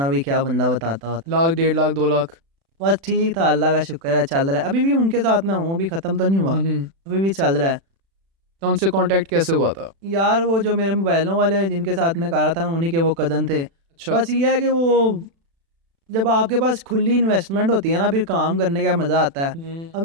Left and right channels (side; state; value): left; late; 36 ms